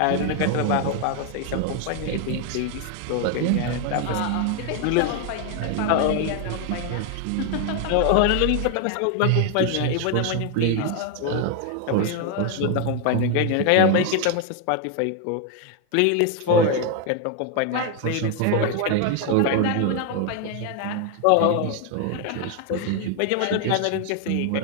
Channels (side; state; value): both; different; correlation 0.01